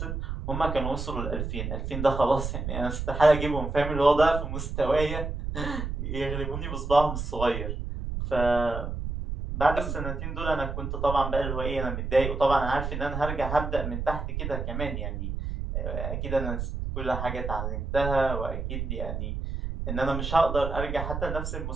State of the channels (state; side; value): noise; right; rumble, 4 dB below the sound